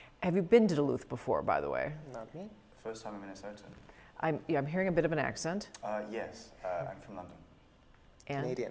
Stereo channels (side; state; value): both; identical; correlation 1.00